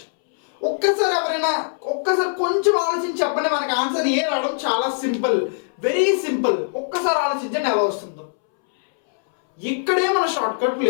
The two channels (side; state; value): right; silent; 65 dB below the other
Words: ఒక్కసారి కొంచెం ఆలోచించి చెప్పండి మనకి ఆన్సర్ ఏ రావడం చాలా సింపుల్ వెరీ సింపుల్ ఒక్కసారి ఆలోచించండి ఎలా వస్తుందో ఇక్కడే మన షార్ట్ కట్